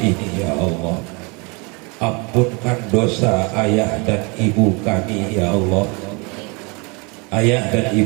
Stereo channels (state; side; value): quieter; left; 30.3 dB